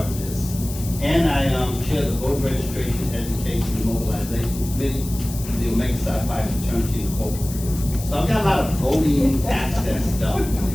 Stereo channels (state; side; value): noise; left; hiss, 13 dB below the sound